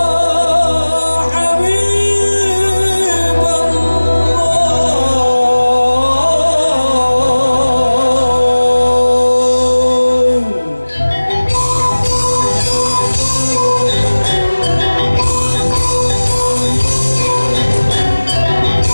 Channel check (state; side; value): inverted; both; correlation -1.00